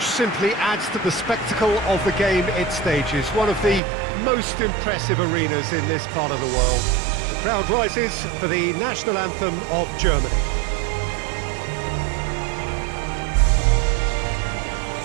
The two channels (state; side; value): drops out; left; at 3.8 s